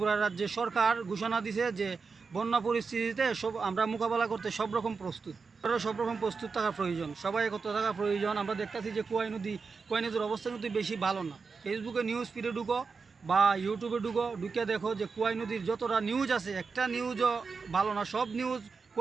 রাজ্যের সরকার ঘোষণা দিছে যে বন্যা পরিস্থিতিতে আমরা মোকাবেলা করতে সব রকম প্রস্তুত। সব রকম প্রস্তুত থাকা প্রয়োজন, সবাই কত থাকা প্রয়োজন। আমরা দেখতেছি যে কুয়াই নদীর অবস্থা কিন্তু বেশি ভালো না। ফেসবুকে নিউজ ফিডে ঢুকো বা ইউটিউবে ঢুকে দেখো যে কুয়াই নদীর যতটা নিউজ আছে একটা নিউজও ভালো না। সব নিউজ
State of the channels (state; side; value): quieter; left; 4.9 dB